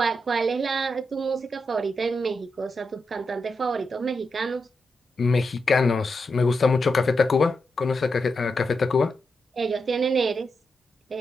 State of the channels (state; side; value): normal; both; correlation 0.85